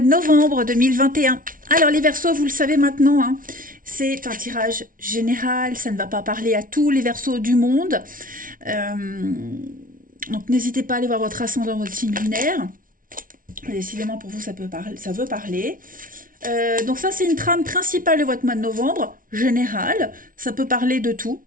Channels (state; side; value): late; left; 0.40 ms